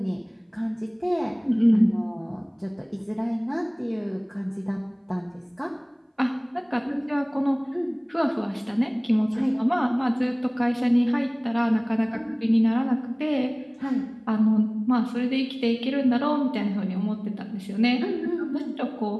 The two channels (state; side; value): identical; both; correlation 1.00